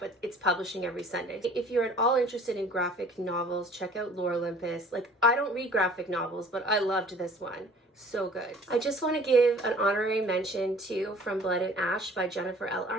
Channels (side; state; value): both; normal; correlation 0.51